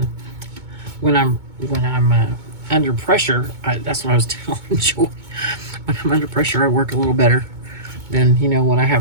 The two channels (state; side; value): late; left; 2.2 ms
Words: when I'm under pressure, that's what I was telling Joy. When I'm under pressure, I work a little better than, you know, when I